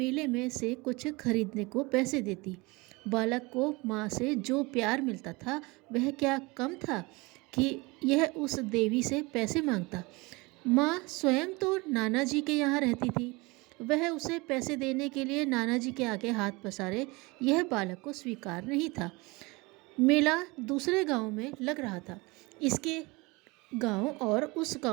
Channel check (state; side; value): quieter; left; 24.8 dB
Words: में से कुछ खरीदने को पैसे देती। बालक को माँ से जो प्यार मिलता था वह क्या कम था कि यह उस देवी से पैसे मांगता। माँ स्वयं तो नाना जी के यहाँ रहती थी। वह उसे पैसे देने के लिए नाना जी के आगे हाथ पसारे, यह बालक को स्वीकार नहीं था। मेला दूसरे गांव में लग रहा था। इसके गांव और उस